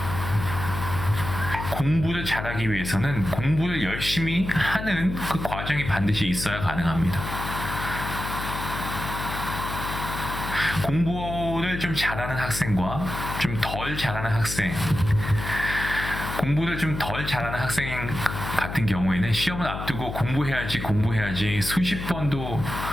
공부를 잘하기 위해서는 공부를 열심히 하는 그 과정이 반드시 있어야 가능합니다. 공부를 좀 잘하는 학생과 좀 덜 잘하는 학생, 공부를 좀 덜 잘하는 학생 같은 경우에는 시험을 앞두고 공부해야지 수십 번도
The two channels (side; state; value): left; noise; hum, 6 dB below the sound